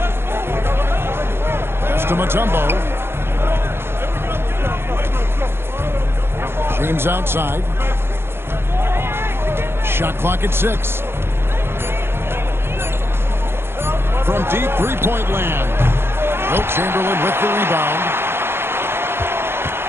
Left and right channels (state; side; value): late; left; 0.11 ms